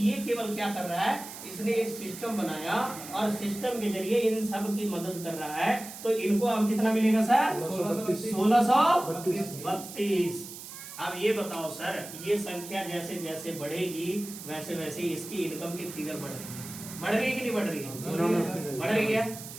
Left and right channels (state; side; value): noise; right; hiss, 12 dB below the sound